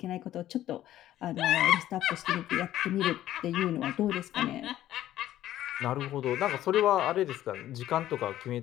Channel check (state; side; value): quieter; right; 13.1 dB